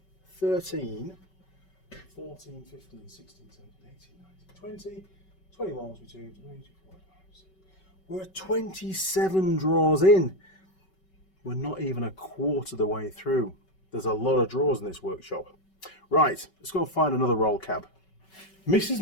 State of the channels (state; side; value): late; right; 5.3 ms